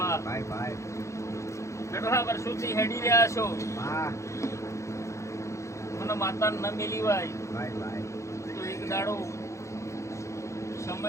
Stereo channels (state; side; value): late; right; 0.14 ms